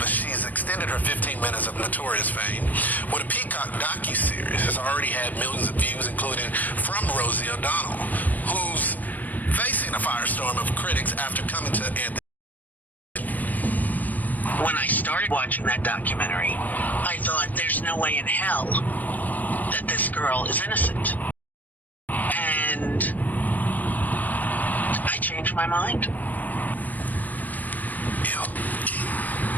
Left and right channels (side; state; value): right; late; 0.082 ms